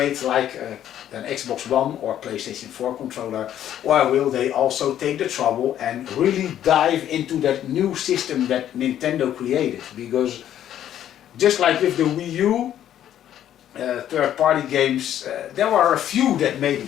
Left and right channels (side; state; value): right; quieter; 11.0 dB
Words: like an Xbox One or PlayStation 4 controller, or will they also take the trouble and really dive into that new system that Nintendo created? Because just like with the Wii U third-party games, there were a few that